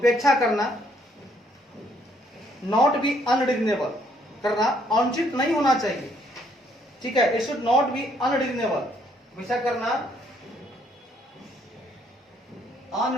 करना, नॉट बी अनरीजनेबल करना, अनुचित नहीं होना चाहिए, ठीक है, it should not be unreasonable, हमेशा करना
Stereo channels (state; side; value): normal; both; correlation 0.68